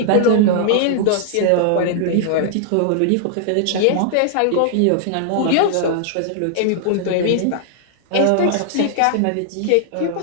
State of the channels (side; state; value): both; different; correlation -0.01